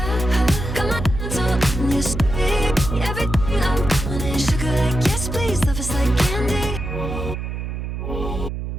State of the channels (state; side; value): noise; right; hum, 5 dB below the sound